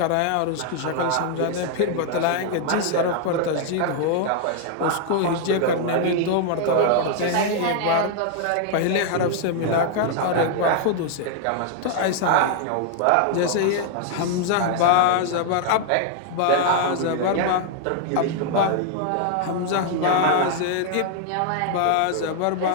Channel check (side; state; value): both; different; correlation 0.00